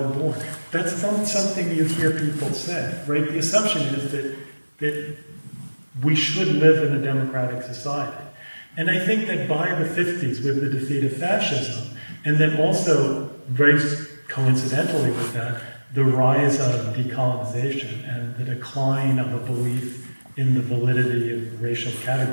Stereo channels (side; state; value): both; inverted; correlation -1.00